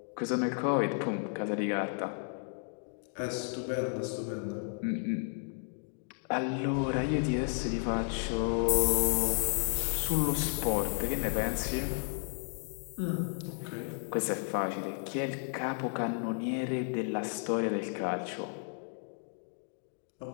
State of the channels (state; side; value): silent; right; 56 dB below the other